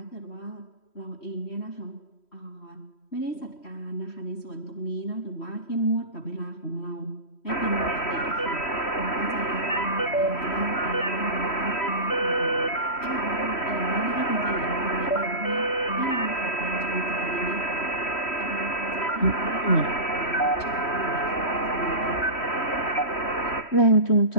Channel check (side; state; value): right; late; 3.1 ms